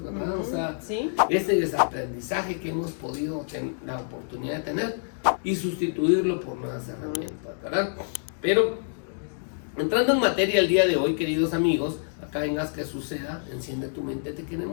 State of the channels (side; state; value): right; silent; digital silence